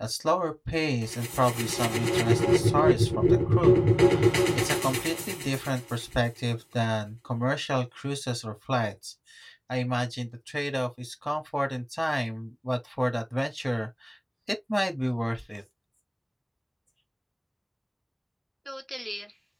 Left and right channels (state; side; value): identical; both; correlation 1.00